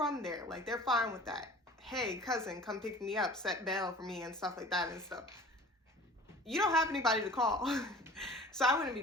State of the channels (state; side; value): normal; both; correlation 0.45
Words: there, like, they're fine with that. Hey, cousin, come pick me up, set bail for me and stuff like that and stuff. You don't have anybody to call. So I wouldn't be